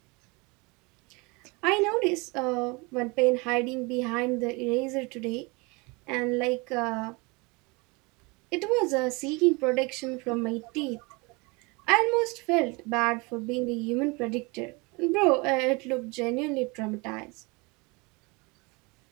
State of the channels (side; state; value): left; quieter; 27.3 dB